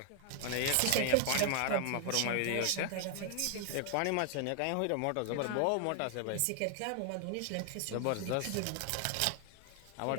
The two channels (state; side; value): different; both; correlation 0.00